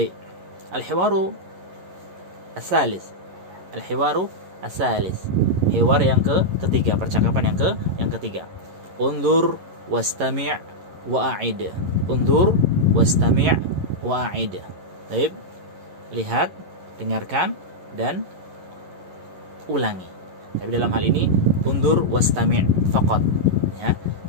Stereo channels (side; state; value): left; late; 11 ms